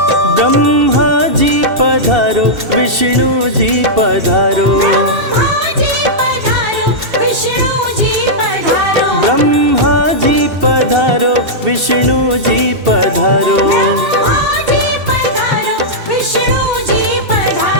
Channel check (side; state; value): left; late; 2.7 ms